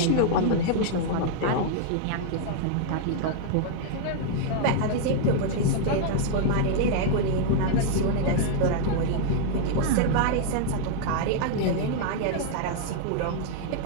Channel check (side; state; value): both; different; correlation 0.00